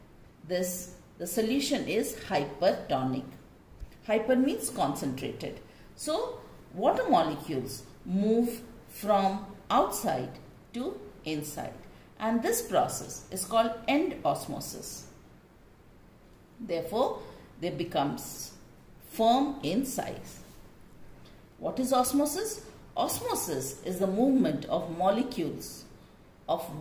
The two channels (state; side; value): identical; both; correlation 1.00